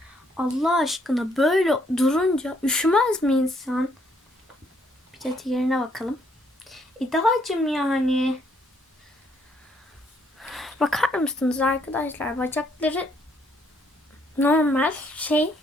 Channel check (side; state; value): both; normal; correlation 0.69